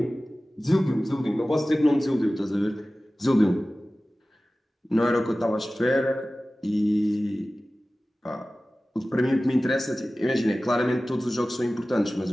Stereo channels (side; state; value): both; normal; correlation 0.97